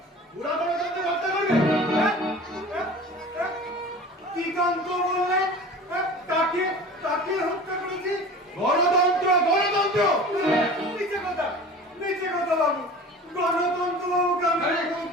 ওরা গণতন্ত্র হত্যা করবে। কি কান্ত বললেন? তাকে তাকে হত্যা করেছি? গণতন্ত্র গণতন্ত্র নিচে কথা বাবু। গণতন্ত্র বাবুকে আমি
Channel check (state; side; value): normal; both; correlation 0.39